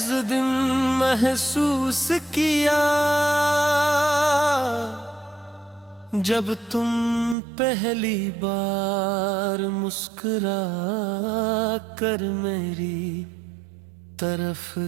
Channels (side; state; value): left; drops out; at 7.4 s